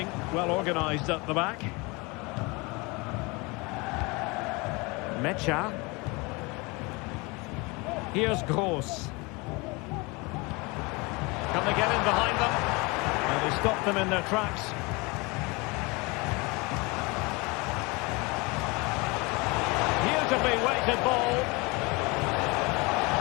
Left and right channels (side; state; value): right; quieter; 26.5 dB